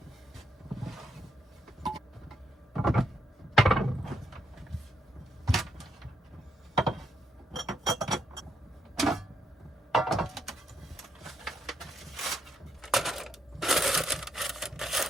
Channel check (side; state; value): both; normal; correlation 0.76